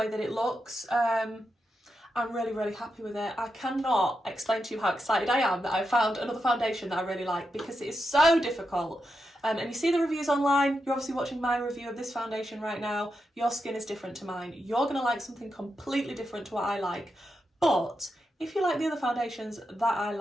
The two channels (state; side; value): normal; both; correlation 0.87